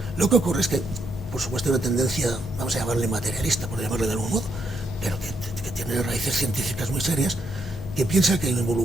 Lo que ocurre es que, por supuesto, hay una tendencia, vamos a llamarle materialista, por llamarle de algún modo, pero que tiene raíces científicas muy serias, que piensa que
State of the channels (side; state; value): both; normal; correlation 0.77